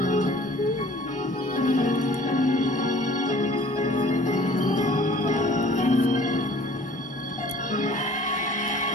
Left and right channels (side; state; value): both; normal; correlation 0.51